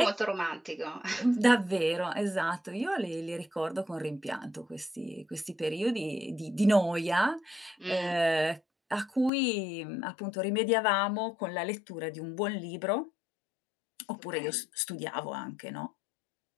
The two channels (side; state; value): right; drops out; at 9.3 s